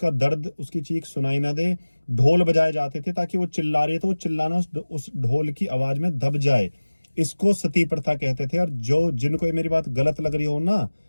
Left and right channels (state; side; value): inverted; both; correlation -1.00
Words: दर्द उसकी चीख सुनाई ना दे। ढोल बजाए जाते थे ताकि वो चिल्ला रही है तो वो चिल्लाना उस ढोल की आवाज में दब जाए। इसको सती प्रथा कहते थे। और जो जिनको ये मेरी बात गलत लग रही हो ना,